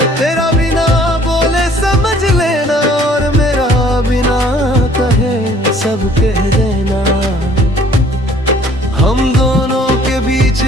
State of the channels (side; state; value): both; normal; correlation 0.57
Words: तेरा बिना बोले समझ लेना, और मेरा बिना कहे सब कह देना। हम दोनों के बीच